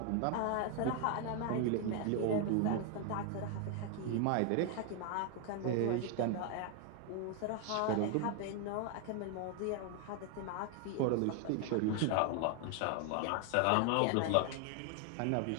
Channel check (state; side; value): different; both; correlation 0.00